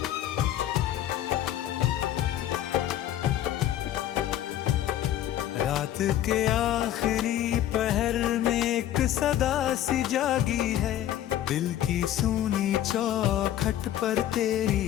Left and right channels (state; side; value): quieter; right; 12.2 dB